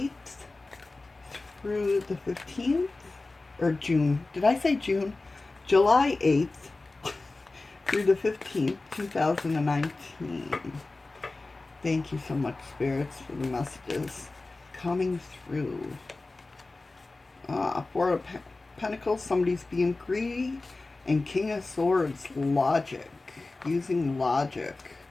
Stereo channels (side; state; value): right; quieter; 3.3 dB